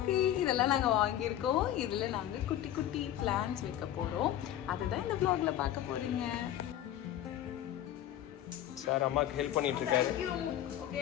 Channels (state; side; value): quieter; right; 11.9 dB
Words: இதெல்லாம் நாங்கள் வாங்கியிருக்கோம். இதில் நாங்கள் குட்டி குட்டி பிளான்ஸ் வைக்க போகிறோம். அதுதான் இந்த vlogல பார்க்க போறீங்க. சார் அம்மாக்கு ஹெல்ப் பண்ணிட்டு இருக்காரு.